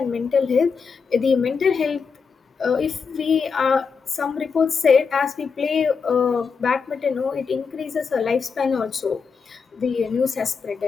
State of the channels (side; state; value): right; quieter; 5.6 dB